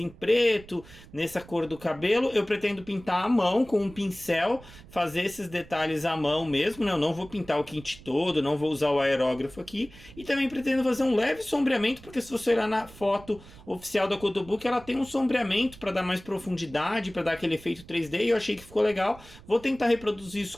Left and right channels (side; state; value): right; noise; rumble, 20 dB below the sound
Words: preto, nessa cor do cabelo. Eu pretendo pintar à mão com um pincel, fazer esses detalhes à mão mesmo, né? Eu não vou pintar o kit todo, não vou usar o aerógrafo aqui. E também pretendo fazer um leve sombreamento, porque se você olhar na foto oficial da Kotobuki, ela tem um sombreamento para dar mais profundidade, para dar aquele efeito 3D, e eu achei que ficou legal. Vou tentar reproduzir isso